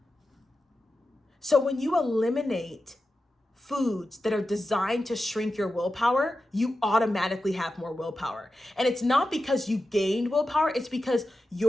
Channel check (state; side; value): normal; both; correlation 0.91